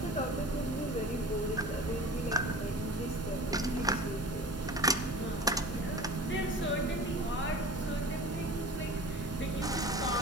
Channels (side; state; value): both; normal; correlation 0.38